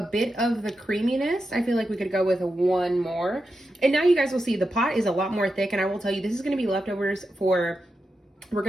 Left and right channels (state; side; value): normal; both; correlation 0.88